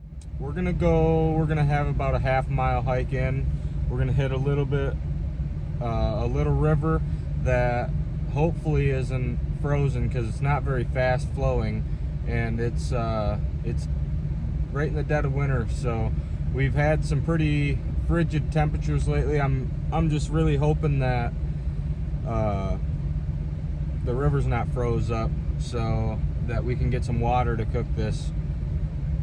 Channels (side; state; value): both; identical; correlation 1.00